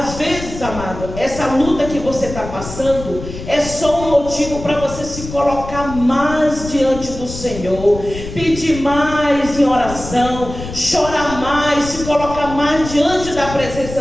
vezes, amado, essa luta que você está passando é só um motivo para você se colocar mais diante do Senhor, pedir mais em oração, chorar mais, se colocar mais diante da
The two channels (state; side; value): noise; left; rumble, 10 dB below the sound